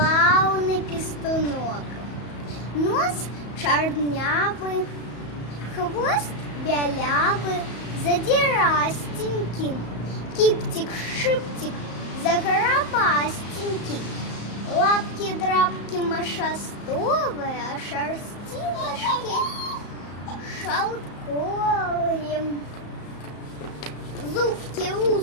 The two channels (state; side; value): late; right; 34 ms